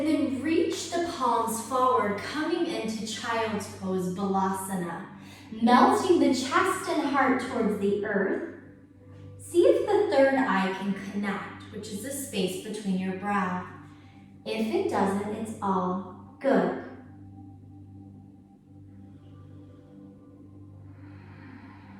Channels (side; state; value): both; identical; correlation 1.00